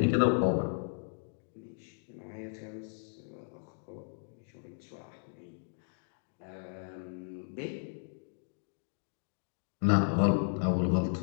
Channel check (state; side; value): silent; right; digital silence